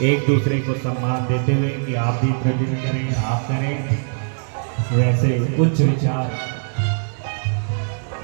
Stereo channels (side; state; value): left; silent; digital silence